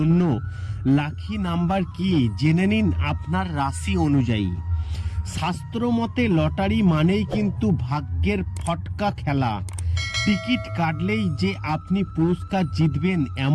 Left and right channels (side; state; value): both; identical; correlation 1.00